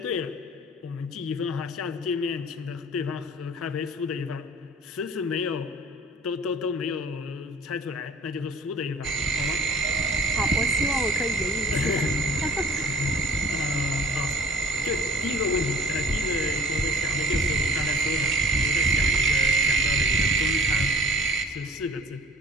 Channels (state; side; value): normal; both; correlation 0.47